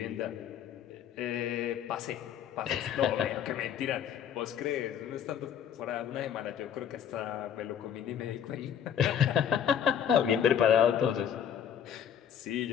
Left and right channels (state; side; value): quieter; right; 8.9 dB